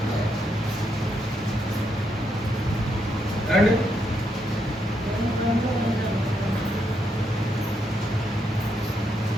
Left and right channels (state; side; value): normal; both; correlation 0.79